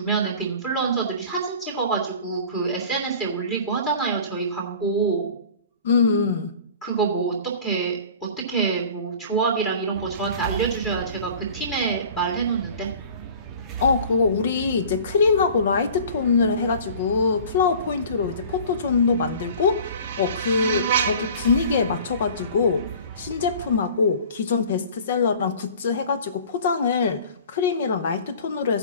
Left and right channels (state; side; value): inverted; both; correlation -0.44